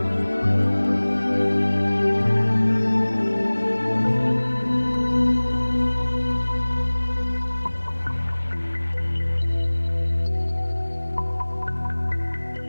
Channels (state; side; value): inverted; both; correlation -1.00